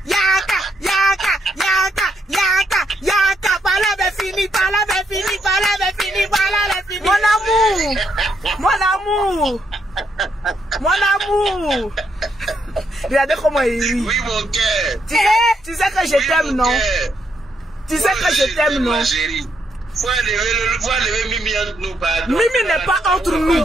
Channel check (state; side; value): normal; both; correlation 0.76